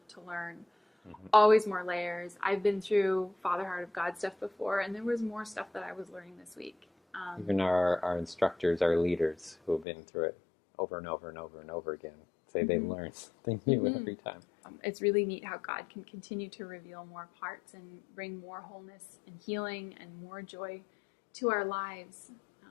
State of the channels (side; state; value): right; drops out; at 9.9 s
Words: to learn, always more layers. I've been through Father Heart of God stuff before, and there was more stuff that I was learning this week. Even our instructors, our leaders who have been through it over and over and over and over again, say they learn something new every time. It's really neat how God can continue to reveal more parts and bring more wholeness and healing and more joy to our lives,